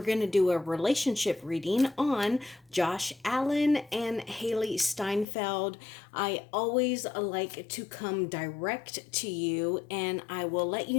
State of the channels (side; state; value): right; drops out; at 5.2 s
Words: going to do a relationship reading on Josh Allen and Hailey Steinfeld. I always like to come direct to you, and I will let